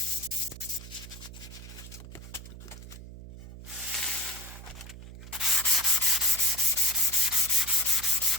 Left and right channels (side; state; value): right; noise; hum, 14 dB below the sound